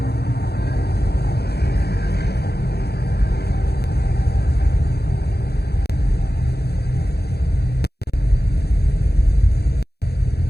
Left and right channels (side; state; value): right; late; 0.47 ms